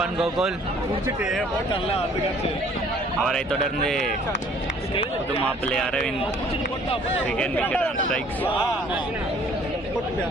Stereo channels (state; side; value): normal; both; correlation 0.56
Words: கோகுல் அவரை தொடர்ந்து புது மாப்பிள்ளை Aravind second wicket on strikes.